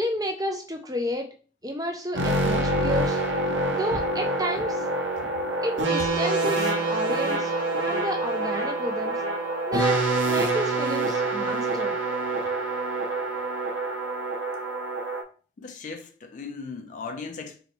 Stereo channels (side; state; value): both; normal; correlation 0.29